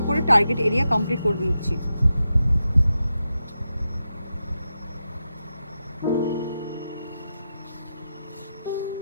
করে টার্গেট এরিয়া কমপ্লিট করে নিচ্ছি।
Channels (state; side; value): inverted; both; correlation -0.88